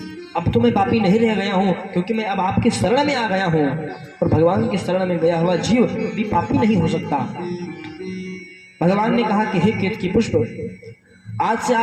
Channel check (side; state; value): both; identical; correlation 1.00